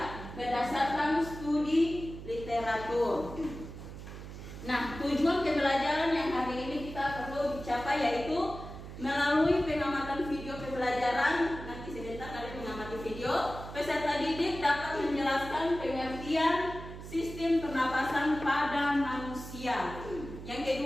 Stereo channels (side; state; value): right; noise; hum, 11 dB below the sound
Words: berdasarkan studi literatur. Nah, tujuan pembelajaran yang hari ini kita perlu dicapai yaitu melalui pengamatan video pembelajaran. Nanti sebentar kalian mengamati video. Peserta didik dapat menjelaskan pengertian sistem pernapasan pada manusia. Yang